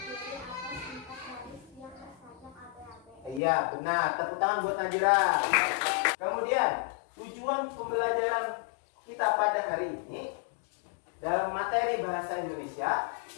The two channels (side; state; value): right; drops out; at 3.4 s